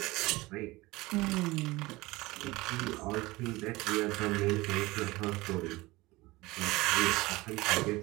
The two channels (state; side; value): quieter; left; 20.8 dB